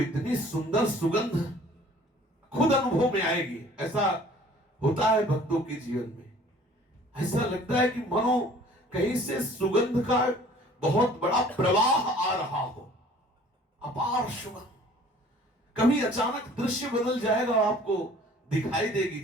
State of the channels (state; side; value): normal; both; correlation 0.51